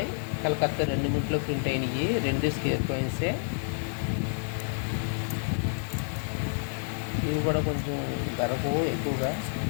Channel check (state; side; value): silent; right; 59 dB below the other